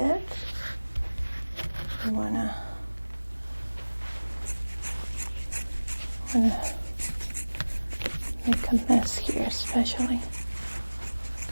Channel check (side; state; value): both; inverted; correlation -1.00